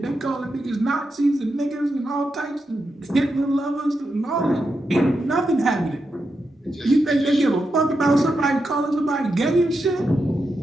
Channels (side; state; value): both; normal; correlation 0.86